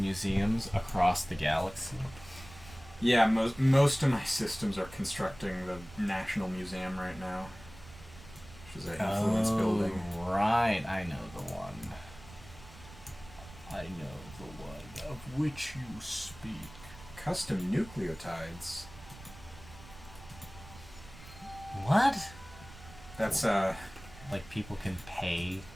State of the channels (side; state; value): right; noise; rumble, 18 dB below the sound